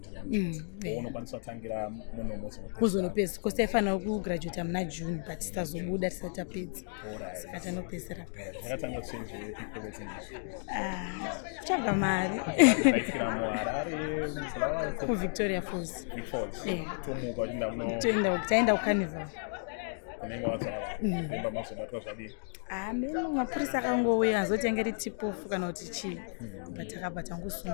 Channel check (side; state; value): right; silent; 56 dB below the other